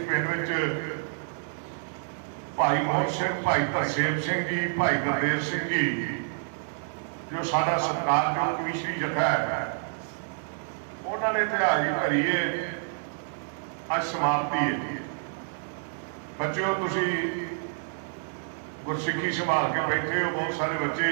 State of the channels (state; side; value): silent; left; digital silence